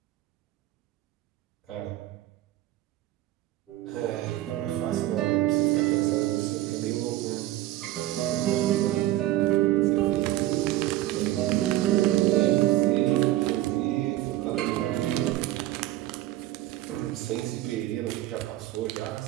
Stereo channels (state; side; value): quieter; left; 15.2 dB